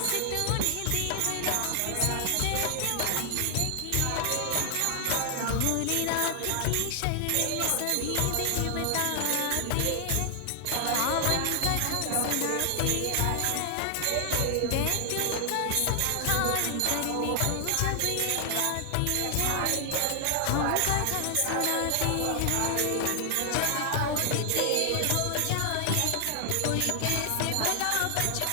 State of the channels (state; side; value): different; both; correlation 0.00